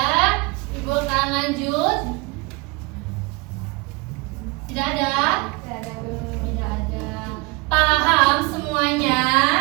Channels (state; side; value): quieter; left; 26.9 dB